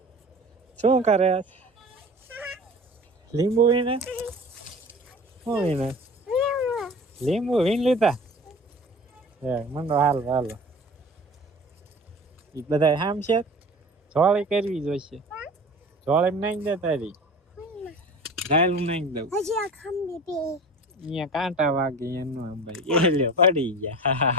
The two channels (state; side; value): normal; both; correlation 0.38